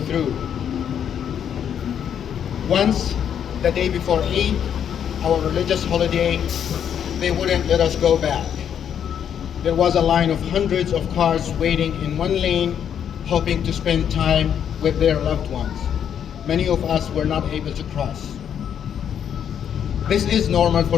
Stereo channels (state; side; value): quieter; right; 8.7 dB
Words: through. Once, the day before Eid, our religious holiday, they wouldn't let us go back. There was a line of hundreds of cars waiting in one lane, hoping to spend time with their loved ones. Many of us were not able to cross. This is normal for